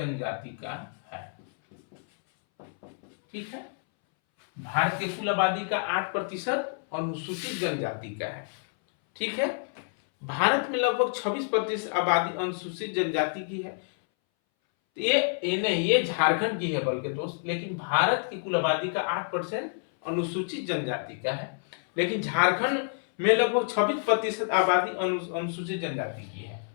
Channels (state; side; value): silent; right; 59 dB below the other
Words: का है। ठीक है, भारत के कुल आबादी का 8% अनुसूचित जनजाति का है। ठीक है, भारत में लगभग 26% आबादी अनुसूचित जनजाति की है। ये नहीं, ये झारखंड की है बल्कि दोस्त, लेकिन भारत की कुल आबादी का 8% अनुसूचित जनजाति का है, लेकिन झारखंड में लगभग 26% आबादी अनुसूचित जनजाति की है।